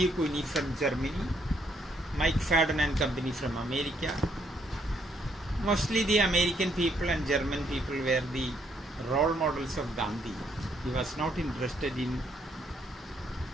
Cuny from Germany, Mike Fadden and company from America. Mostly the American people and German people were the role models of Gandhi. He was not interested in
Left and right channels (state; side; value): normal; both; correlation 0.71